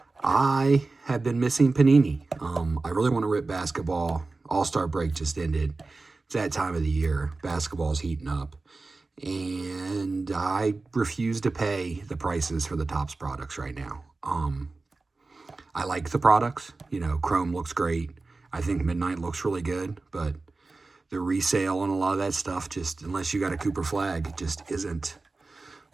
I have been missing Panini. I really want to rip basketball. All-Star break just ended. It's that time of the year. Basketball's heating up. And I refuse to pay the prices for the Topps products right now. I like the products. You know, Chrome looks great. I think Midnight looks really good, but the resale on a lot of that stuff, just unless you got a Cooper flag, just isn't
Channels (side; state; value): left; quieter; 3.6 dB